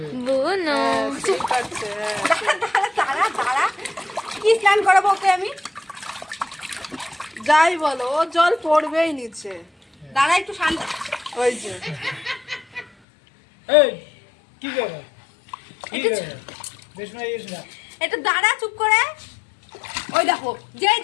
দাঁড়া দাঁড়া, কি স্নান করাবো ওকে আমি? যাই বলো, ও জল পড়বেই নিচে। দাঁড়া একটু শান্ত। ওই যে এই কি করে কি করে বেশ না ইস না একটু দাঁড়া চুপ করে। ওই দেখো যে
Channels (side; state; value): right; drops out; at 12.9 s